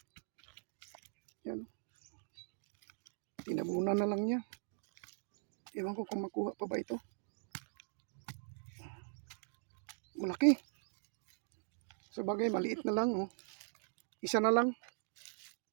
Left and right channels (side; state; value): left; silent; digital silence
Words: Yan. Tinabunan na lang niya. Iwan ko kung makuha pa ba ito. Malaki. Sa bagay, maliit na lang, oh. Isa na lang.